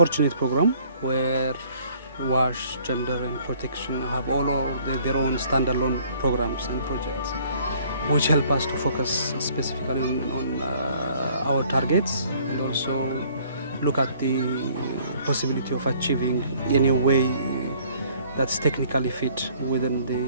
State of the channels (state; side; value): inverted; both; correlation -0.58